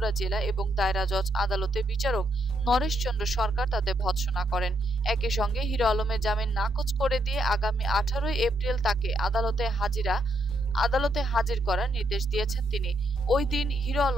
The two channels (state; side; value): normal; both; correlation 0.77